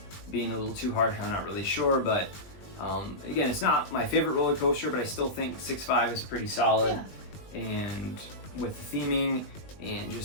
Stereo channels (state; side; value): late; right; 20 ms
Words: being a little too harsh, I'm not really sure, but again, it's not my favorite roller coaster, but I still think 6.5 is pretty solid. Yeah. And with the theming and